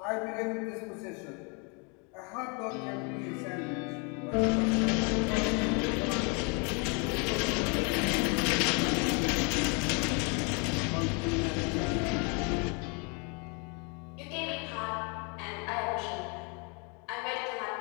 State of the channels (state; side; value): quieter; right; 34.0 dB